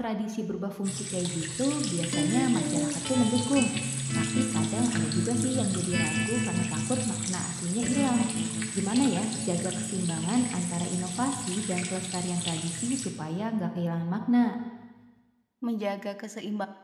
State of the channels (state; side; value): identical; both; correlation 1.00